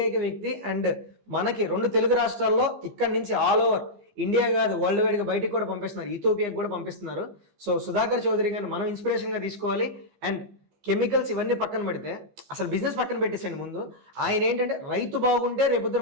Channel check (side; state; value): left; late; 15 ms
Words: వ్యక్తి. అండ్ మనకి 2 తెలుగు రాష్ట్రాల్లో ఇక్కడి నుంచి ఆల్ ఓవర్ ఇండియా కాదు వరల్డ్ వైడ్గా బయటికి కూడా పంపిస్తున్నారు, ఇథియోపియాకి కూడా పంపిస్తున్నారు. సో సుధాకర్ చౌదరి గారిని మనం ఇన్స్పిరేషన్గా తీసుకోవాలి. అండ్ కెమికల్స్ ఇవన్నీ పక్కన పెడితే అసలు బిజినెస్ పక్కన పెట్టేసండి. ముందు ఆయన ఏంటంటే రైతు బాగుంటే రేపొద్దున